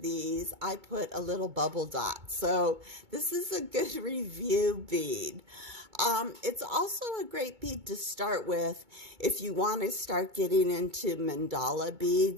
I put a little bubble dot. So this is a good review bead. It's also a great bead to start with if you want to start getting into mandala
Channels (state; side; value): late; left; 2.2 ms